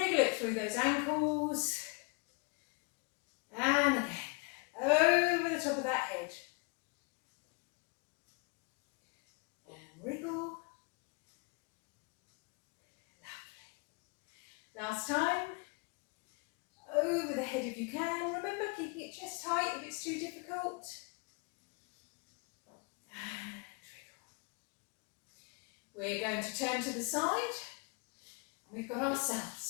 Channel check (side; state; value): right; quieter; 30.6 dB